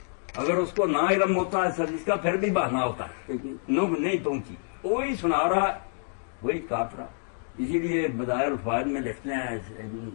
اگر اس کو نہ علم ہوتا ہے سر اس کا پھر بھی بہانا ہوتا ہے، نوب نہیں پہنچی، وہی سنا رہا ہے وہی کاٹ رہا. اسی لیے بدائر الفوائد میں لکھتے ہیں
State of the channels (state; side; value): silent; right; 59 dB below the other